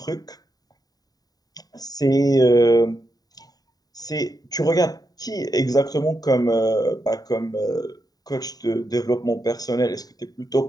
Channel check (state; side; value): late; right; 0.18 ms